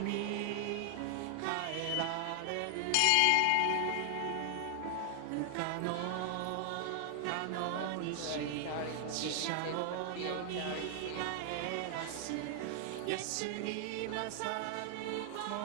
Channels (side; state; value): both; different; correlation 0.00